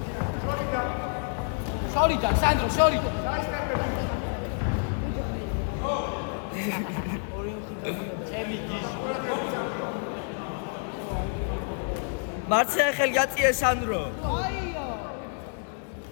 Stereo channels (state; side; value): silent; right; 56 dB below the other